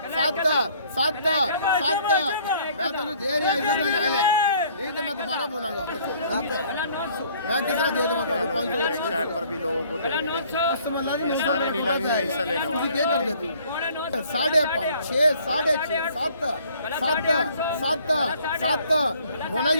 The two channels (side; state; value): both; inverted; correlation -0.58